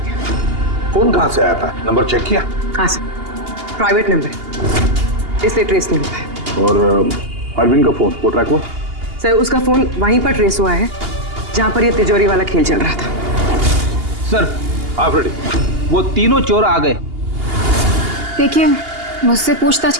फोन कहाँ से आया था? नंबर चेक किया? हाँ सर, प्राइवेट नंबर है, इसलिए ट्रेस नहीं हो पाया। और अरविंद का फोन वो ट्रैक हुआ? सर, उसका फोन वहीं पर ट्रेस हुआ है जहां पर ये तिजोरी वाला खेल चल रहा था। सर, आप रेडी? वो तीनों चोर आ गए। देखिए, मुझसे पूछताछ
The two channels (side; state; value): left; late; 2.8 ms